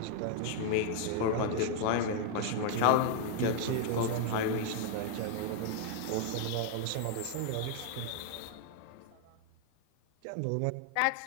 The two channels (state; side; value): different; both; correlation 0.00